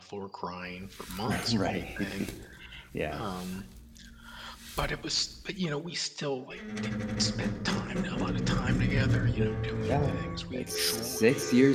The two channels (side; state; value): both; identical; correlation 1.00